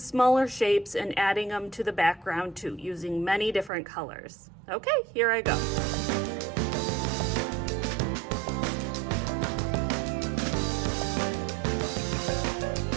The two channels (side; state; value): left; drops out; at 3.7 s